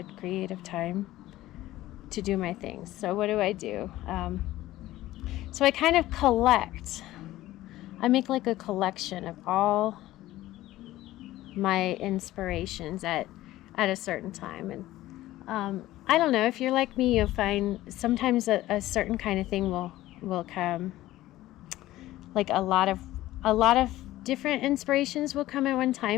creative time to do my things. So what do? So I kind of I make like a collection of all my inspirations at a certain time. And I don't know, if you're like me, you'll find sometimes a certain kind of thing will come. Like a lot of different inspirations will come at one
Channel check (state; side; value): quieter; right; 15.8 dB